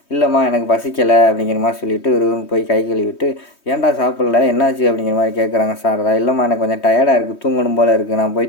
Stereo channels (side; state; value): right; late; 3.2 ms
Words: இல்லைம்மா, எனக்கு பசிக்கலை அப்படிங்கிற மாதிரி சொல்லிவிட்டு ஒரு போய் கை கழுவிட்டு, ஏன்டா சாப்பிட்ல, என்னாச்சு அப்படிங்கிற மாதிரி கேட்குறாங்க சாரதா. இல்லைம்மா, எனக்கு கொஞ்சம் டயர்டாக இருக்குது, தூங்கணும் போல் இருக்குது, நான்